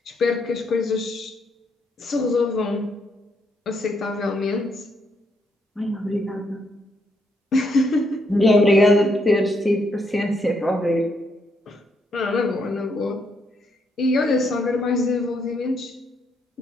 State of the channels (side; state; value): both; normal; correlation 0.76